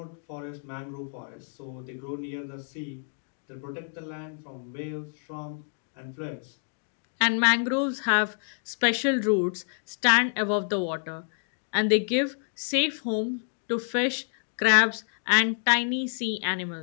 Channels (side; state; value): right; silent; 58 dB below the other